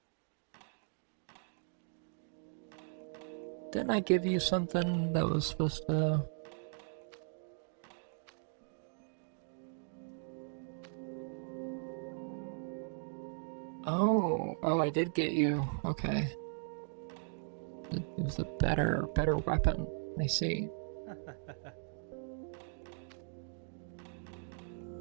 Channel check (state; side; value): silent; left; digital silence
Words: Didn't I give you something that was supposed to... Oh, I did get you. Okay. It was a better weapon. I see.